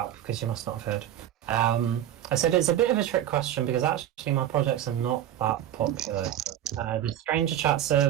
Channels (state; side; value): quieter; left; 11.5 dB